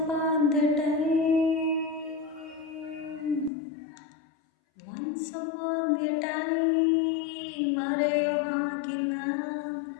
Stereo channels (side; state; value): right; drops out; at 3.5 s